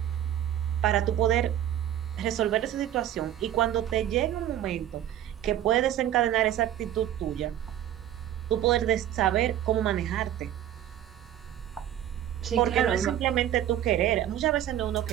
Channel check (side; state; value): left; quieter; 11.6 dB